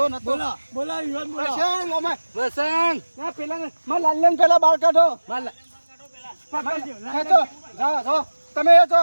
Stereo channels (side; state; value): both; inverted; correlation -1.00